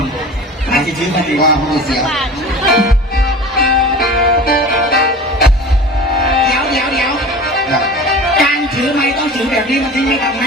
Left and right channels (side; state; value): both; normal; correlation 0.37